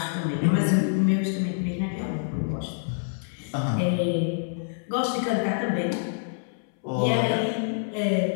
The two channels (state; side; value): silent; right; 61 dB below the other